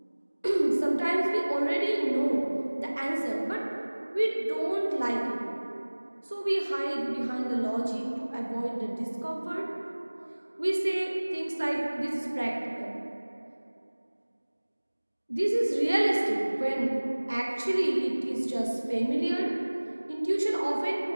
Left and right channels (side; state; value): both; inverted; correlation -1.00